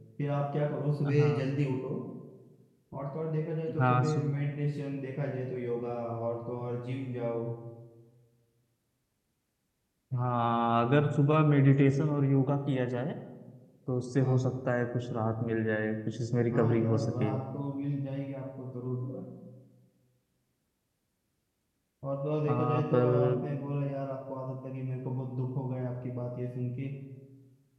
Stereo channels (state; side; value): identical; both; correlation 1.00